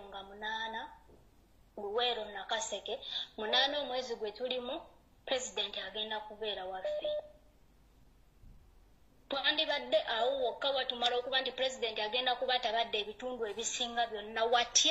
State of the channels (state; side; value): identical; both; correlation 1.00